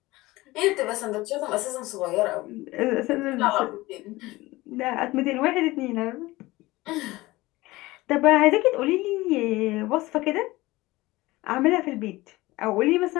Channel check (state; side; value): quieter; right; 19.7 dB